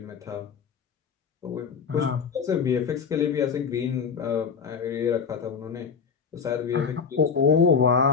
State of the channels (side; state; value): right; quieter; 6.1 dB